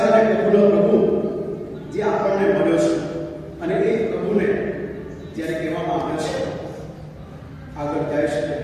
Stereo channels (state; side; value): identical; both; correlation 1.00